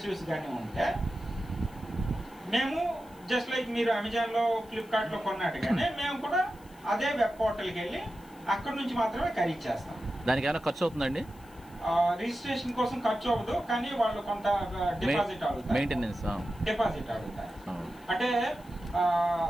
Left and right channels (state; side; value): noise; left; hiss, 27 dB below the sound